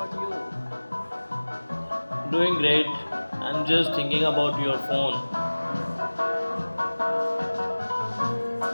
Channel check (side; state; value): both; inverted; correlation -1.00